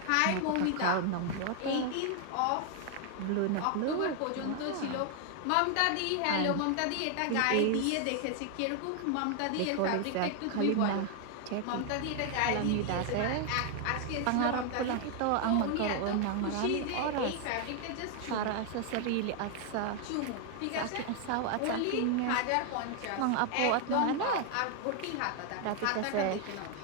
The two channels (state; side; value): different; both; correlation 0.00